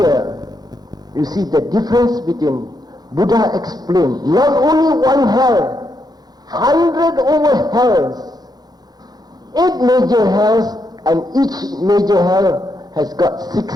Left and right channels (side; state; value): left; late; 0.19 ms